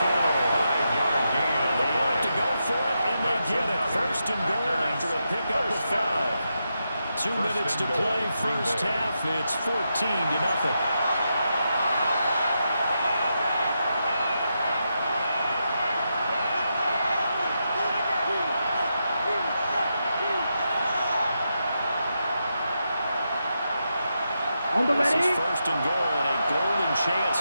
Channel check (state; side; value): inverted; both; correlation -0.85